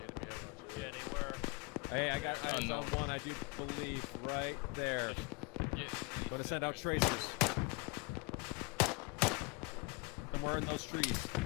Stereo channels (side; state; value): right; quieter; 29.5 dB